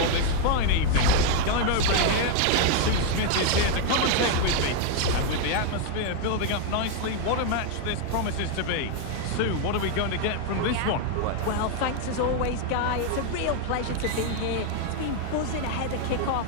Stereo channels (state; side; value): different; both; correlation 0.01